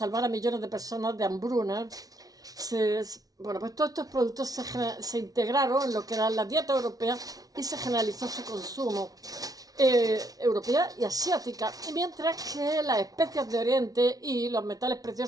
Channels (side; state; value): left; late; 0.18 ms